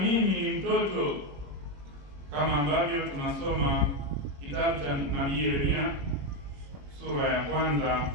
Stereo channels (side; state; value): left; late; 21 ms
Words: ni mtoto. Kama ambavyo tunasoma kitabu cha nabii Yeremia sura ya kwanza